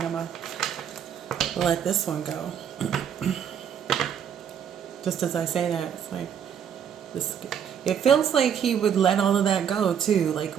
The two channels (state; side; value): quieter; left; 8.4 dB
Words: I'm going to let this one go. Just as I say that, it's like, this. It feels like he would let all of that go too. Like,